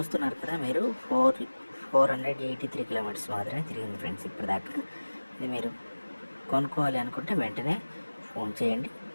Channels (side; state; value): both; inverted; correlation -1.00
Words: కదా మీరు, 483 కిలోమీటర్స్ మాత్రమే తిరిగింది ఫ్రెండ్స్ ఇప్పటిదాకా. ఇది మీరు కొనుక్కోవాలి అనుకుంటే వెంటనే ఫోన్ చేయండి.